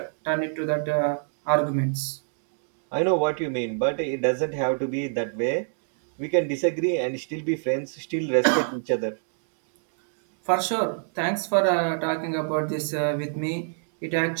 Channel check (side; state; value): left; silent; digital silence